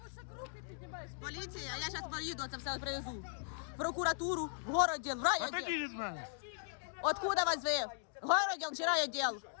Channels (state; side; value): silent; right; digital silence